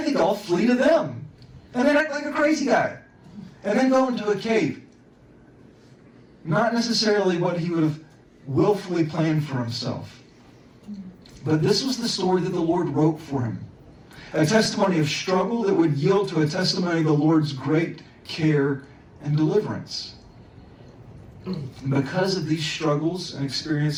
think I'll flee to them. And then act like a crazy guy. And then go into a cave. Not necessarily what he would have willfully planned for himself. But this was the story that the Lord wrote for him. A testimony of struggle that would yield to a testimony of the Lord's great care and deliverance. And because of these struggles and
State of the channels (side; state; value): both; identical; correlation 1.00